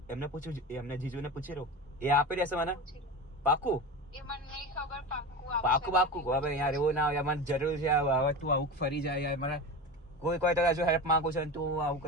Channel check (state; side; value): normal; both; correlation 0.26